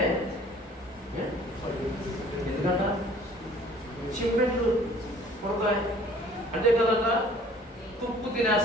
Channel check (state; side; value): normal; both; correlation 0.52